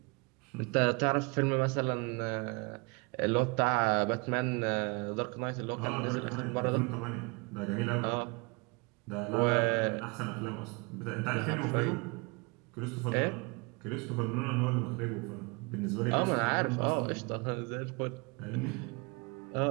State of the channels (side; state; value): left; quieter; 29.9 dB